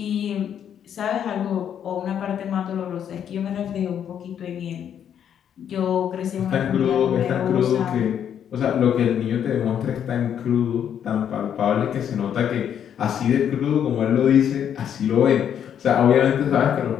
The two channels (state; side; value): quieter; right; 9.0 dB